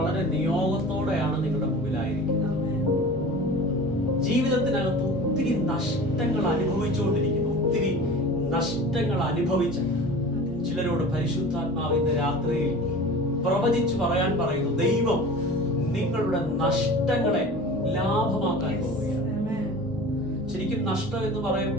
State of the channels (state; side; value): normal; both; correlation 0.38